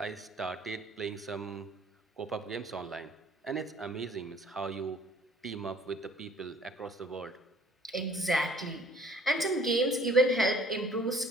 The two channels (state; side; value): normal; both; correlation 0.56